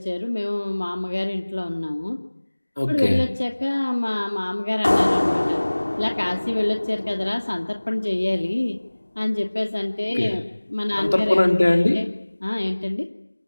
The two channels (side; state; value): both; inverted; correlation -1.00